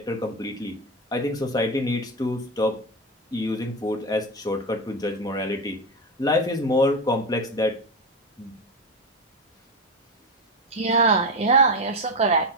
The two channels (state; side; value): normal; both; correlation 0.16